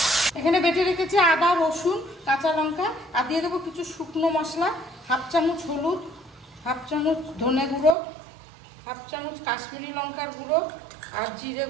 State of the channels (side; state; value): left; drops out; at 8.0 s